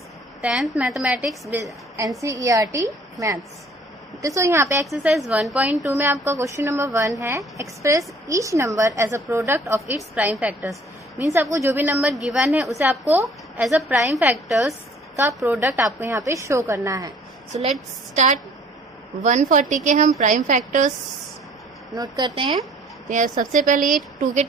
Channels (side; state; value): both; normal; correlation 0.54